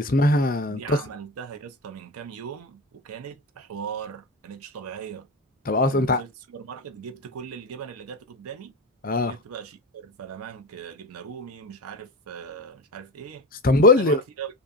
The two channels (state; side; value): normal; both; correlation 0.26